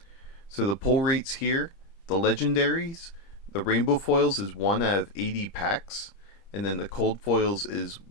So the pull rates here, the legendaries, the rainbow foils is 1 out of 80 packs. And then the cold foils is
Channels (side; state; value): right; late; 30 ms